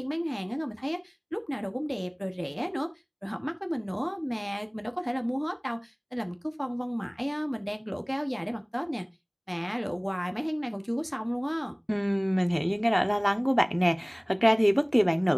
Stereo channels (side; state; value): both; identical; correlation 1.00